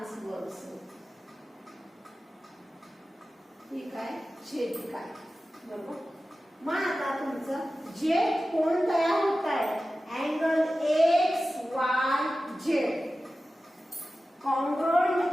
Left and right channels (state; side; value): normal; both; correlation 0.94